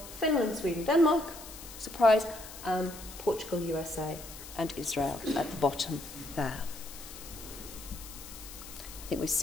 Finland, Sweden, Denmark, surprise, Portugal, USA, and Israel at the bottom there. I think we've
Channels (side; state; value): left; noise; hiss, 14 dB below the sound